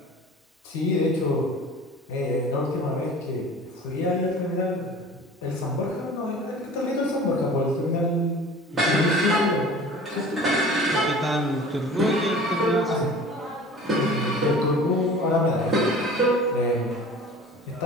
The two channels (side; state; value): both; normal; correlation 0.42